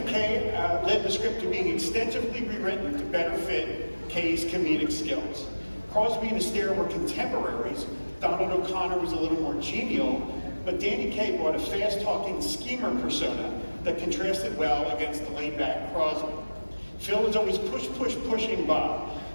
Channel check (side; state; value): both; inverted; correlation -1.00